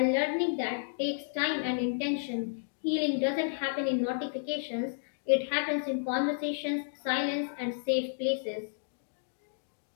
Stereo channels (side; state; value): right; silent; digital silence